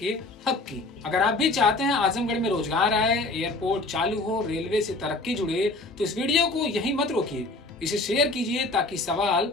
हक की। अगर आप भी चाहते हैं आजमगढ़ में रोजगार आए, एयरपोर्ट चालू हो, रेलवे से तरक्की जुड़े, तो इस वीडियो को यहीं मत रोकिए, इसे शेयर कीजिए ताकि सवाल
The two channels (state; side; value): quieter; right; 3.0 dB